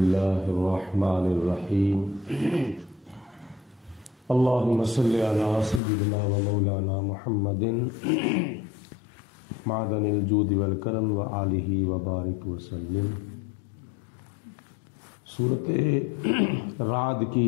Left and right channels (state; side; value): drops out; right; at 5.8 s